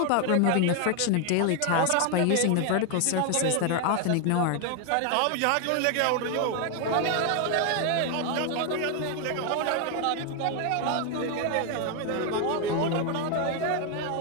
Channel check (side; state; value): both; different; correlation 0.01